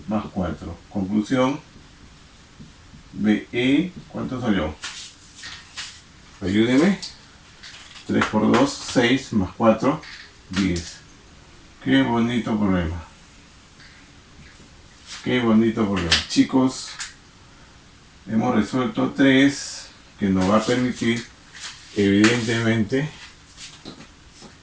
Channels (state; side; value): identical; both; correlation 1.00